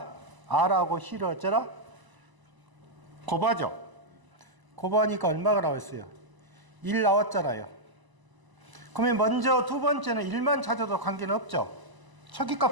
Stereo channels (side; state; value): left; late; 1.0 ms